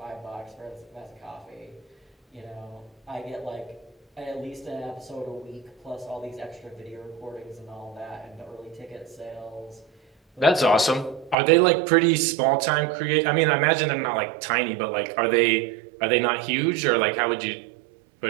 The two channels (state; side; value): drops out; left; at 11.4 s